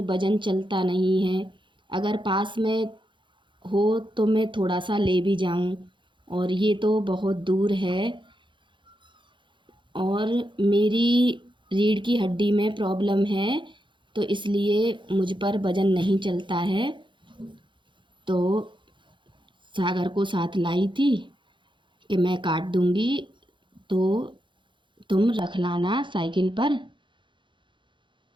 वज़न चलता नहीं है। अगर पास में हो तो मैं थोड़ा सा ले भी जाऊं, और ये तो बहुत दूर है। और मेरी रीढ़ की हड्डी में प्रॉब्लम है, तो इसलिए मुझ पर वज़न नहीं चलता है। तो सागर को साथ लाई थी कि मैं काट दूंगी, तो तुम रख लाना साइकिल पर।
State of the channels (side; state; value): left; late; 0.23 ms